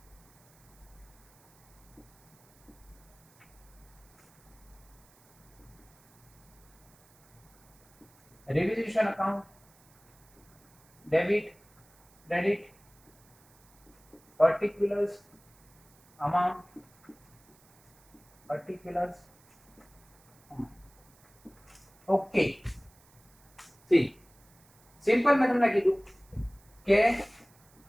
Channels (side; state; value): right; noise; hiss, 30 dB below the sound